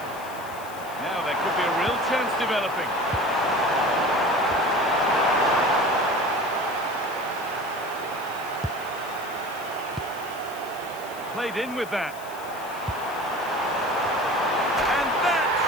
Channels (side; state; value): left; noise; hiss, 18 dB below the sound